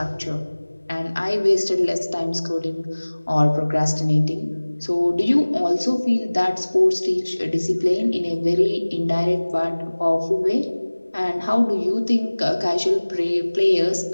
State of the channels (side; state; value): both; inverted; correlation -1.00